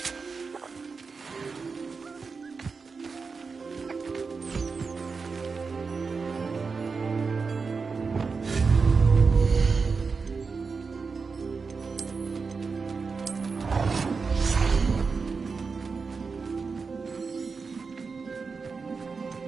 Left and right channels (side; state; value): left; quieter; 4.8 dB